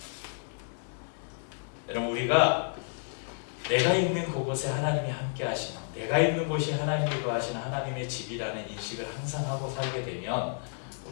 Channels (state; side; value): silent; right; 57 dB below the other